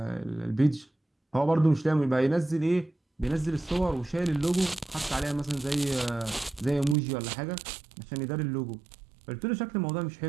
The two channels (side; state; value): left; drops out; at 7.0 s